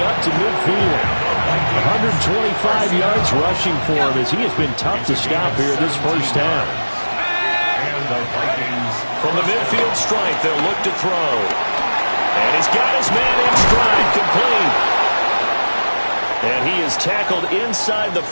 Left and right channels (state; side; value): inverted; both; correlation -1.00